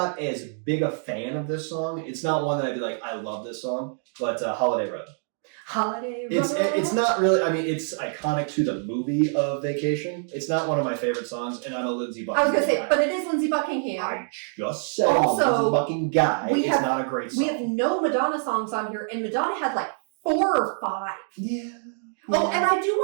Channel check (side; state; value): left; silent; 61 dB below the other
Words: as big a fan of this song. It's not one that I'd be like, I love this song, but Holiday Road. Holiday Road. It's not really, I mean, it's iconic to the movie of Vacation. It's not one of my favorite songs, and I'm a Lindsay Buckingham I was going to say, but it is Lindsay Buckingham. I just said also, Lindsay Buckingham guy. It's not a great song. We have no Madonna songs on here, and Madonna had like 4 or 5. Yeah. Oh, and I do